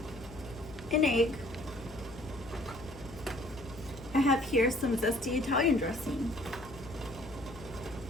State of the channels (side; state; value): left; noise; hum, 18 dB below the sound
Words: An egg. I have here some zesty Italian dressing,